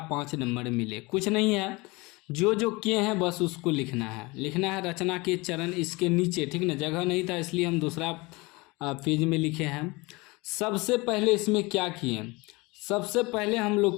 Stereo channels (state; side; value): quieter; right; 24.4 dB